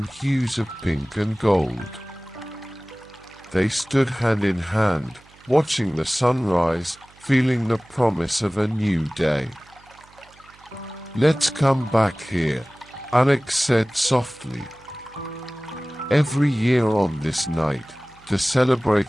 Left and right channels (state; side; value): noise; right; hum, 27 dB below the sound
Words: hues of pink and gold. They stood hand in hand, watching the sunrise, feeling the promise of a new day. "Let's come back here," Alex said softly. "Every year on this night, to